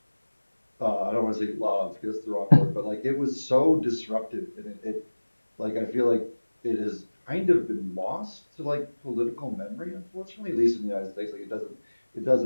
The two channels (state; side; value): inverted; both; correlation -1.00